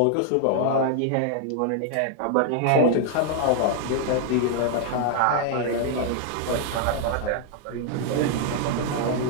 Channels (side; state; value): both; different; correlation 0.00